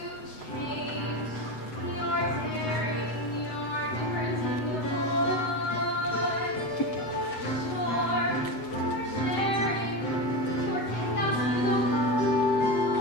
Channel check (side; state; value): right; late; 7.9 ms